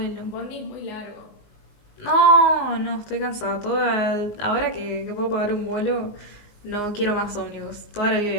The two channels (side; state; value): right; late; 19 ms